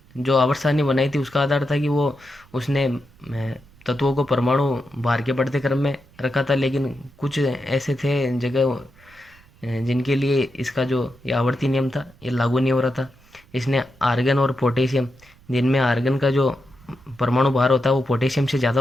जो आवर्त सारणी बनाई थी उसका आधार था कि उसने तत्वों को परमाणु भार के बढ़ते क्रम में रखा था, लेकिन कुछ ऐसे थे जगह जिनके लिए इसका जो ये आवर्ती नियम था ये लागू नहीं हो रहा था। इसने आर्गन और पोटेशियम, जिनमें आर्गन का जो परमाणु भार होता है वो पोटेशियम से ज़्यादा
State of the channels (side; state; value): right; noise; rumble, 27 dB below the sound